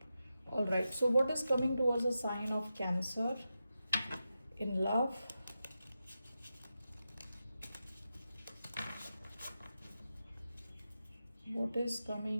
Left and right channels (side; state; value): both; inverted; correlation -0.90